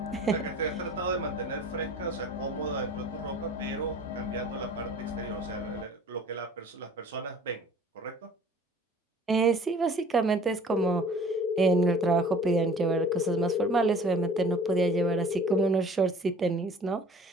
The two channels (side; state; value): both; normal; correlation 0.49